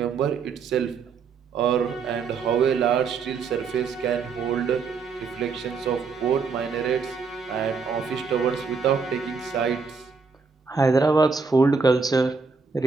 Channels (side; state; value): left; quieter; 5.1 dB